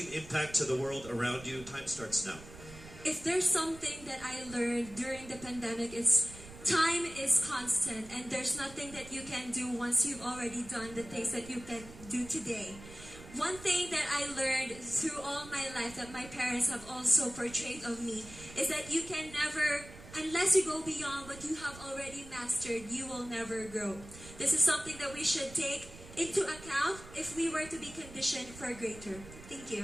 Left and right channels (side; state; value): right; noise; rumble, 17 dB below the sound